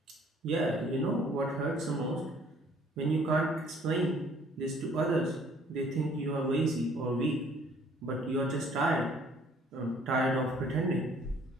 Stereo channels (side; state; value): both; normal; correlation 0.58